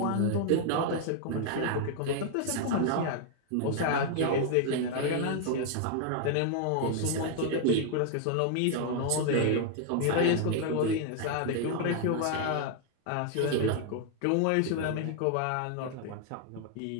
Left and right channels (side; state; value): both; different; correlation 0.00